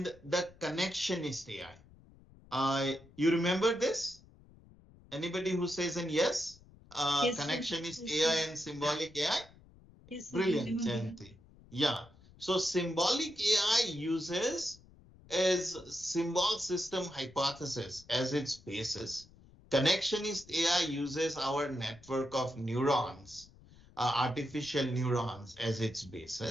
the connectionist AI. You remember this? Anybody who says an yes? Yes, sir. Connectionist Yes, AI sir. and symbolic AI? Yes, sir, I Brilliant, remember. Jayanti. Yeah. So symbolic AI uses as symbol system hypothesis as its basis. Connectionist AI uses our network of neurons, artificial neurons as its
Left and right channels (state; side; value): noise; left; rumble, 24 dB below the sound